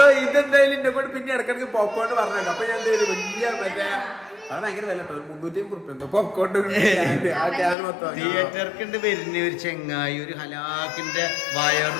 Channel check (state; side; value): drops out; right; at 7.8 s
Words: ഇതെന്തായാലും എന്നെ കൊണ്ട് പിന്നെ ഇടക്കിടക്ക് പോപ്കോൺ പറഞ്ഞേക്കാം. അപ്പൊ ഞാൻ വലിയ മറ്റേ അത് ഭയങ്കര വില 350 പോപ്കോൺ തിയേറ്റർക്ക് വരുന്ന ഒരു ചെങ്ങായി ഒരു ഹലാക്കിന്റെ